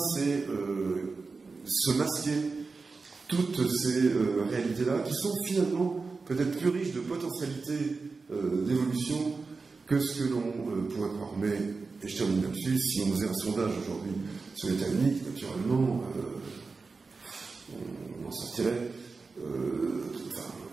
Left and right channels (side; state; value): left; quieter; 4.3 dB